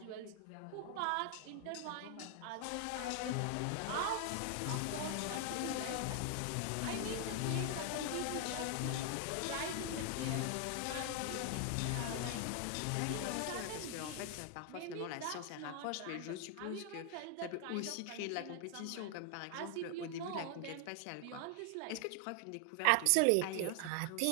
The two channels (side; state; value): both; different; correlation 0.00